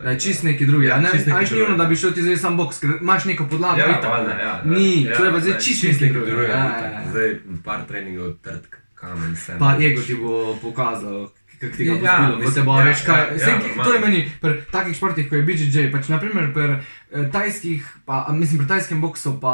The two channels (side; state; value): both; inverted; correlation -1.00